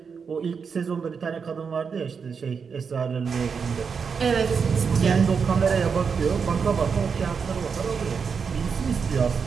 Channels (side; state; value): left; quieter; 5.9 dB